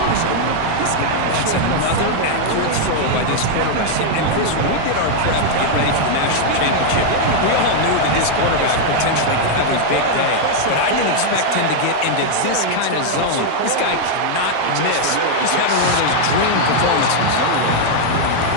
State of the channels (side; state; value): both; different; correlation 0.00